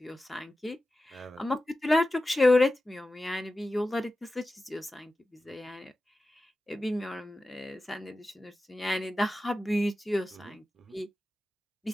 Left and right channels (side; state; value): both; normal; correlation 0.94